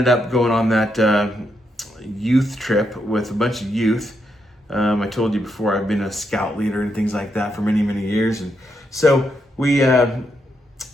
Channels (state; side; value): normal; both; correlation 0.80